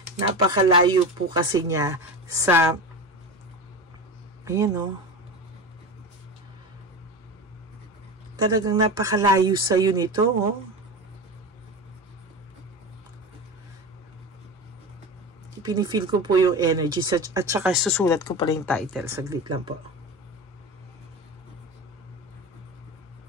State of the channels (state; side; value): normal; both; correlation 0.26